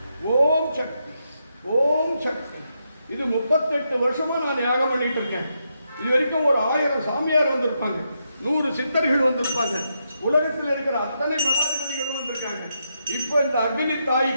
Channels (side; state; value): both; inverted; correlation -0.82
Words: ஓம் சக்தி, ஓம் சக்தி. இது 38 வருஷமா நான் யாகம் பண்ணிட்டு இருக்கேன். இது வரைக்கும் ஒரு 1000 சாமியார் வந்திருப்பாங்க, 100 சித்தர்கள் வந்திருப்பாங்க, உலகத்தில் இருக்கிற அத்தனை மடாதிபதிகளும் வந்திருக்காங்க. இப்போ இந்த அக்னி